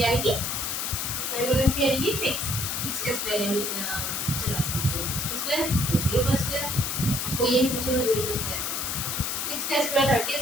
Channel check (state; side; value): noise; left; hiss, 1 dB below the sound